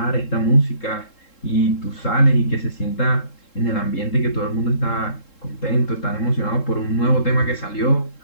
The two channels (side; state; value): right; late; 3.7 ms